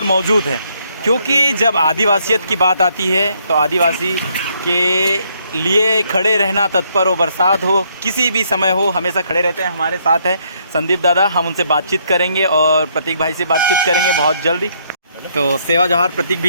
मौजूद हैं। क्योंकि जब आदिवासियत की बात आती है तो आदिवासी के लिए खड़े रहना तत्पर हो, बरसात हो, किसी भी समय हो, हमेशा खड़े रहते हैं। हमारे साथ है संदीप दादा, हम उनसे बातचीत करेंगे और प्रतीक भाई से बातचीत करेंगे बहुत जल्दी। तो सेवा जोहार प्रतीक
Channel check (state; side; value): inverted; both; correlation -0.71